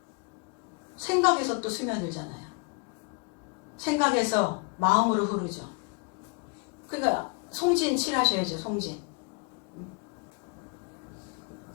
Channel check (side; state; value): right; quieter; 34.0 dB